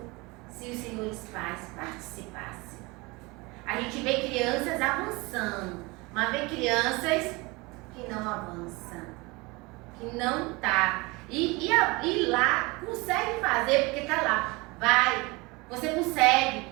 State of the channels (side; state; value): left; quieter; 24.9 dB